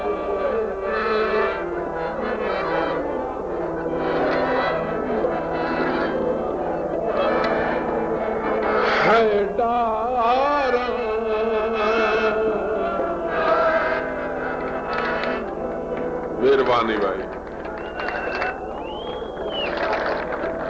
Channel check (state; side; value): identical; both; correlation 1.00